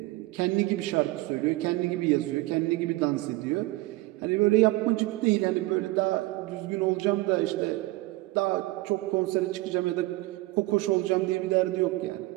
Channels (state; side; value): quieter; left; 19.6 dB